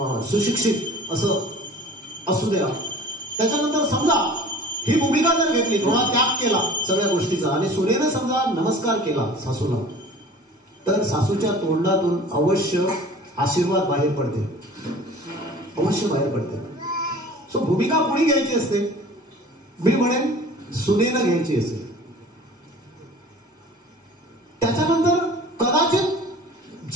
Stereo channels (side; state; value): both; normal; correlation 0.44